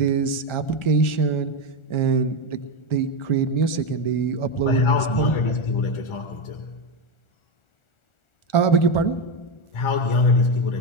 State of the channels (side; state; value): right; late; 1.4 ms